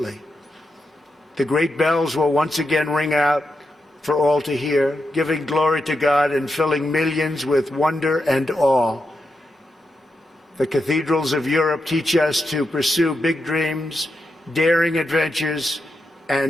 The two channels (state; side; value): normal; both; correlation 0.86